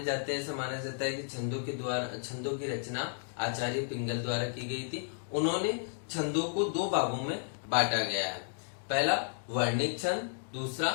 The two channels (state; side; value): silent; right; digital silence